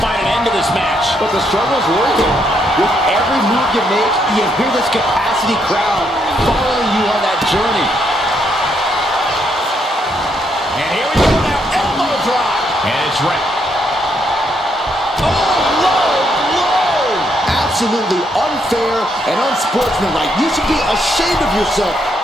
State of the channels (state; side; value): normal; both; correlation 0.75